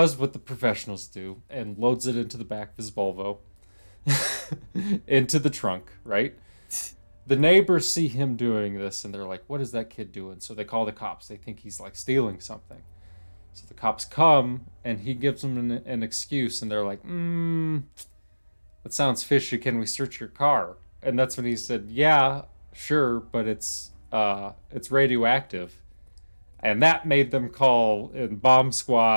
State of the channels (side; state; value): both; inverted; correlation -1.00